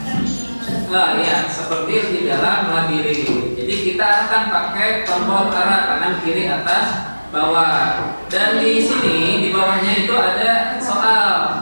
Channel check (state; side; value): inverted; both; correlation -1.00